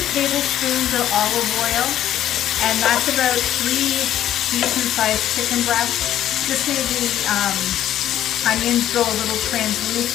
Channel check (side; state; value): right; quieter; 11.8 dB